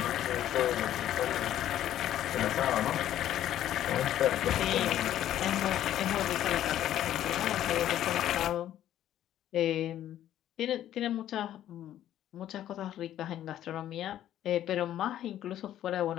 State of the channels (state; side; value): quieter; right; 11.9 dB